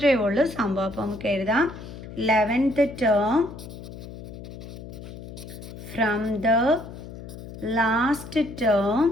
ഉള്ളൂ സംഭവം. അപ്പോൾ നമുക്ക് എഴുതാം 11th term from the last term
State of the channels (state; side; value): noise; left; hum, 13 dB below the sound